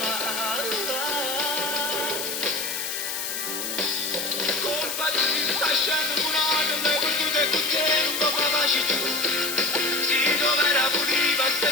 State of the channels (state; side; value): noise; left; hiss, 4 dB below the sound